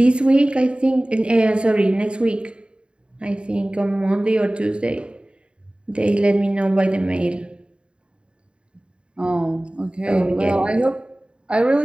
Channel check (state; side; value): late; left; 0.054 ms